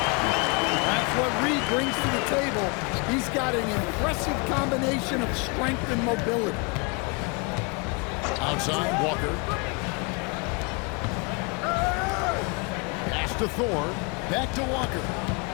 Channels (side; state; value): right; quieter; 31.4 dB